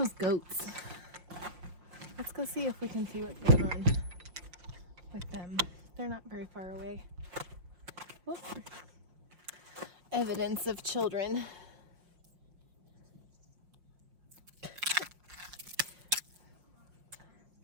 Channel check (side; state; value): left; late; 5.6 ms